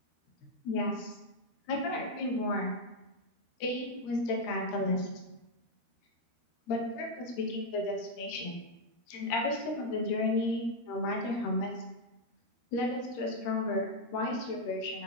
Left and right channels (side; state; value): right; late; 12 ms